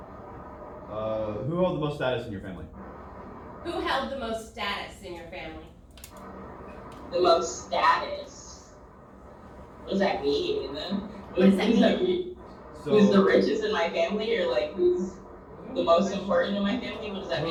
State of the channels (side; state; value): both; identical; correlation 1.00